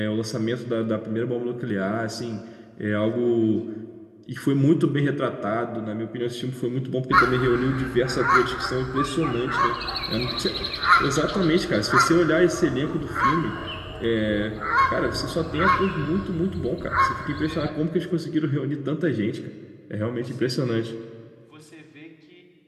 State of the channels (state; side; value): identical; both; correlation 1.00